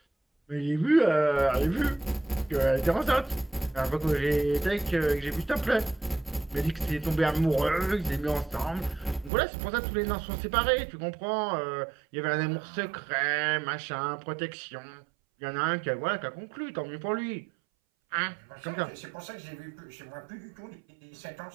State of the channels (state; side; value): drops out; left; at 9.3 s